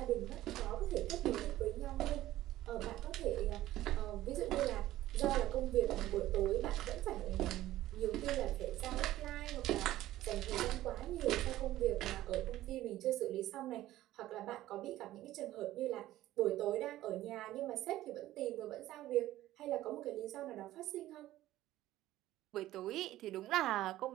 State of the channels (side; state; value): left; quieter; 14.9 dB